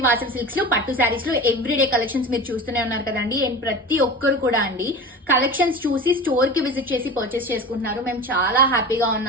Vasavi silks లో పట్టు శారీస్ లో ఎవ్రీడే కలెక్షన్స్ మీరు చూస్తూనే ఉన్నారు కదండి. అండ్ ప్రతి ఒక్కరు కూడా అండి కలెక్షన్స్ చూసి స్టోర్ కి విజిట్ చేసి పర్చేస్ చేసుకుంటున్నారు. మేము చాలా హ్యాపీగా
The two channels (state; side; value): normal; both; correlation 0.32